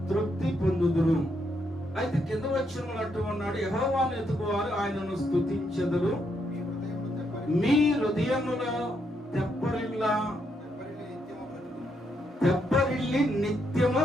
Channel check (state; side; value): normal; both; correlation 0.78